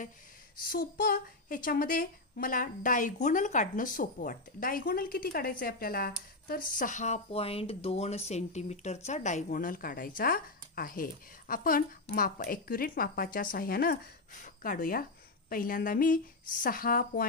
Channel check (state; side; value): quieter; right; 3.1 dB